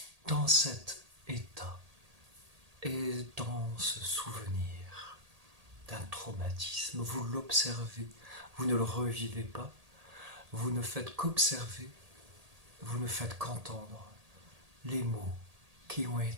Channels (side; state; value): left; late; 1.8 ms